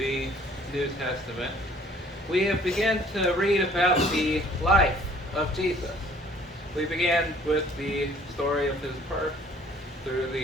New Testament, we have begun to read about the life of Jesus. We began with the story of his birth through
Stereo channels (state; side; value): normal; both; correlation 0.56